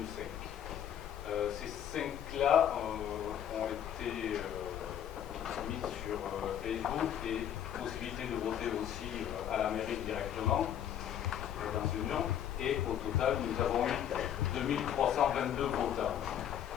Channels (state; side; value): quieter; right; 10.0 dB